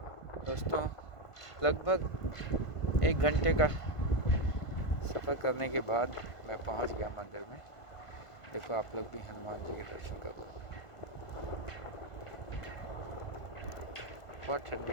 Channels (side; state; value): right; late; 1.5 ms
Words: दोस्तों लगभग 1 घंटे का सफ़र करने के बाद मैं पहुंच गया मंदिर में। देखो आप लोग भी हनुमान जी के दर्शन करो। बहुत